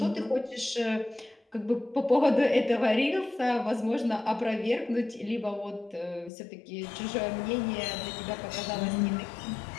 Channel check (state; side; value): drops out; right; at 6.3 s